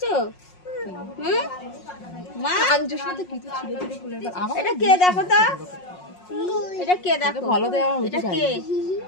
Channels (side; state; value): right; late; 5.5 ms